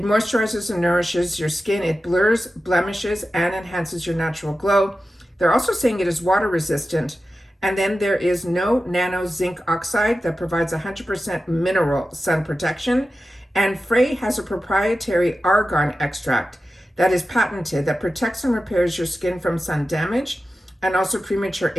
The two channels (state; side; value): normal; both; correlation 0.93